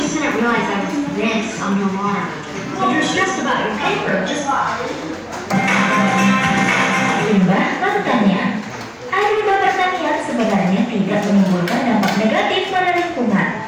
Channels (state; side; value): identical; both; correlation 1.00